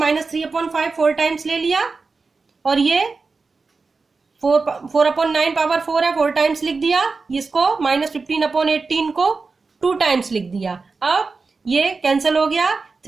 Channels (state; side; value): quieter; left; 4.3 dB